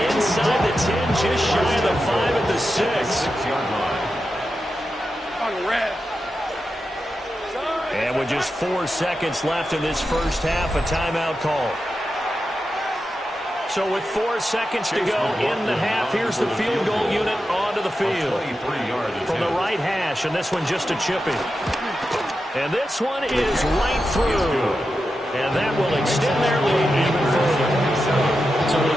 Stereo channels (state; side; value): normal; both; correlation 0.90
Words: inside the 10, just shy of the 5 at the 6. And with just 4 seconds left in this first half, a timeout call. So with 4 seconds to go in the half, here's the field goal unit onto the field. From the right hash, and this one just a chipping. And this one is right through. And that will extend their lead even further. So they